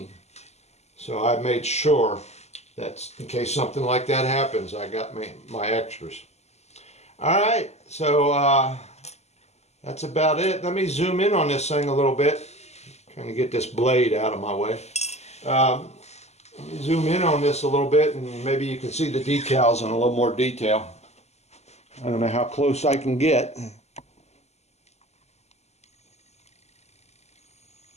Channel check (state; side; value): late; right; 0.32 ms